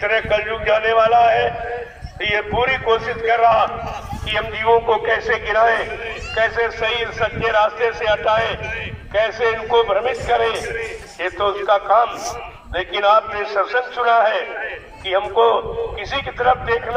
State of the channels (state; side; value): identical; both; correlation 1.00